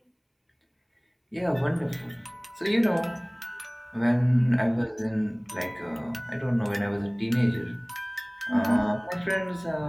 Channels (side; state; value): both; identical; correlation 1.00